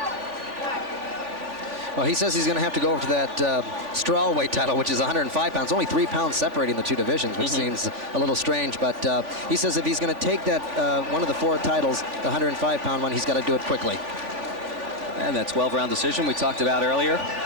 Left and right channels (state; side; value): late; left; 3.5 ms